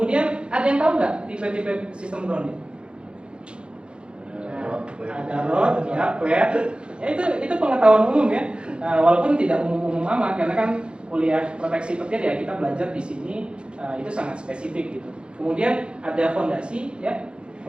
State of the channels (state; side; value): late; left; 0.055 ms